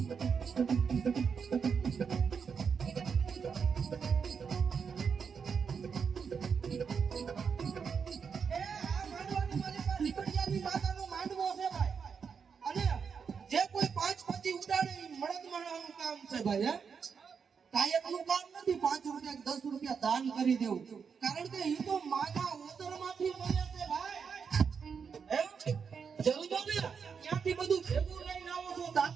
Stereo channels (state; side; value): quieter; left; 6.2 dB